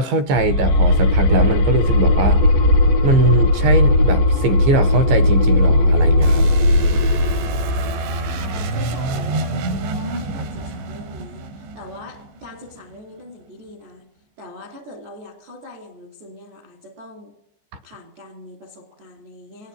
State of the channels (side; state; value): left; late; 15 ms